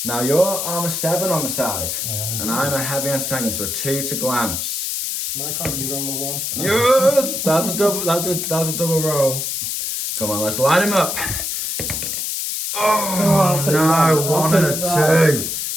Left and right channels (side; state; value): left; noise; hiss, 2 dB below the sound